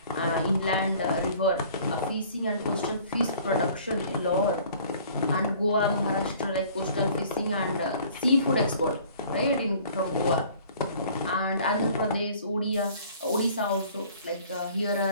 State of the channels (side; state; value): both; inverted; correlation -0.52